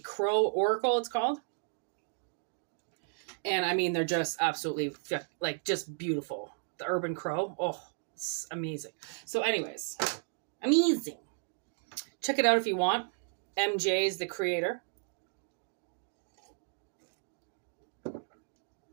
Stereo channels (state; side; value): silent; left; digital silence